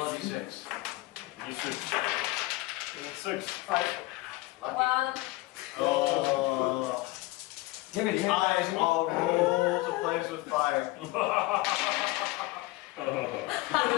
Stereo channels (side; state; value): right; quieter; 19.9 dB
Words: a d6. D6. 6. 5. Lucky. 1. Oh. Give it. Eyes all roll to place with fire.